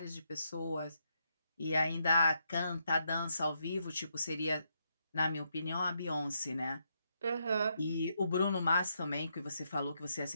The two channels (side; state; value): both; inverted; correlation -0.79